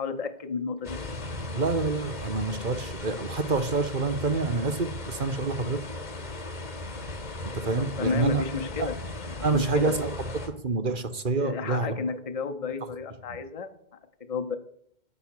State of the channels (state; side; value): late; left; 2.4 ms